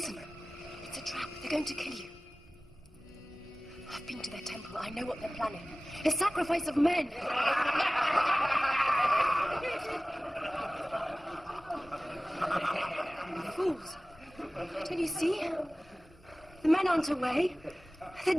it's a trap. They're going to kill you. I've been to their temple. I know what they're planning. A sacrifice of men. Fools. Don't you see? The men aren't away. They're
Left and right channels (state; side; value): normal; both; correlation 0.97